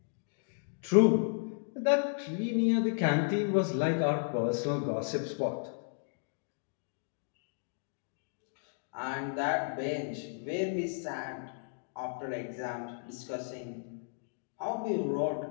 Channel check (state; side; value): silent; right; digital silence